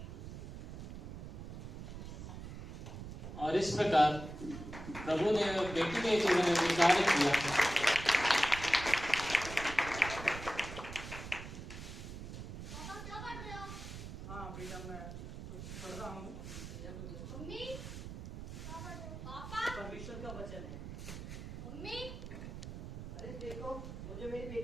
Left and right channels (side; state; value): right; noise; rumble, 9 dB below the sound